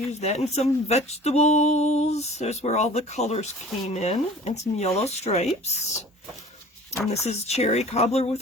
that. And some vegetables. There's where all the colors came in. And some yellow stripes. And this is cherry cobbler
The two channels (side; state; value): both; normal; correlation 0.45